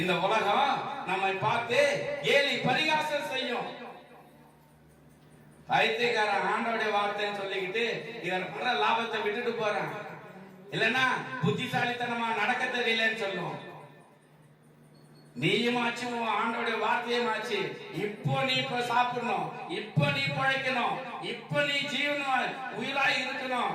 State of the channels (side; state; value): both; identical; correlation 1.00